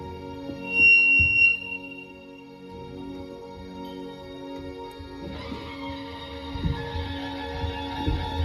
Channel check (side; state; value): both; identical; correlation 1.00